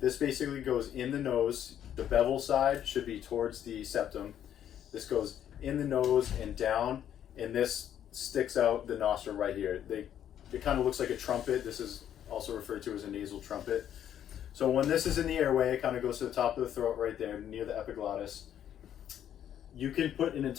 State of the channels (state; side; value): quieter; right; 10.2 dB